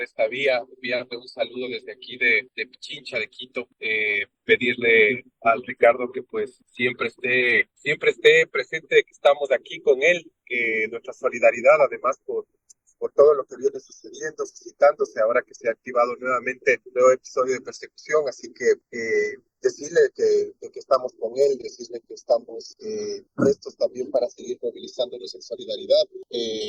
esta vía, enviarle un saludo desde aquí de Pichincha, de Quito, pedirle al Ricardo que pues siempre esté presente, que estamos aquí con él, que nuestra solidaridad además por todo lo que viene sucediendo, suscitándose ahora que se ha activado nuevamente un nuevo episodio de persecución, así que decirle que estamos con él, decirle que estamos prestos también para seguir movilizándonos en solidaridad,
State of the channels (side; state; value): both; identical; correlation 1.00